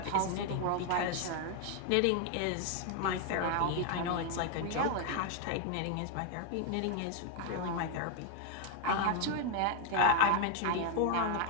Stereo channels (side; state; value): both; different; correlation 0.00